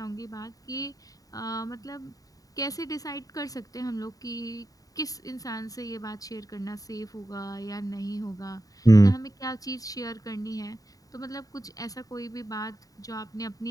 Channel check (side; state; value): right; late; 0.17 ms